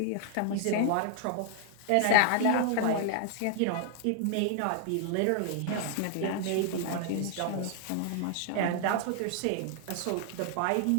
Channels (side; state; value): both; different; correlation 0.00